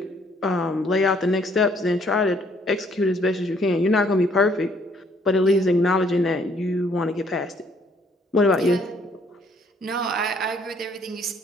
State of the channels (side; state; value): both; normal; correlation 0.64